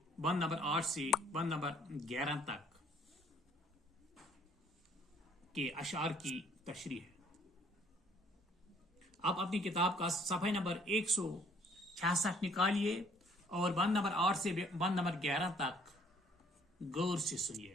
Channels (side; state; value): both; normal; correlation 0.60